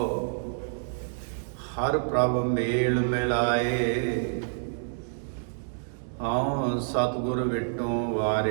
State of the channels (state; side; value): silent; left; digital silence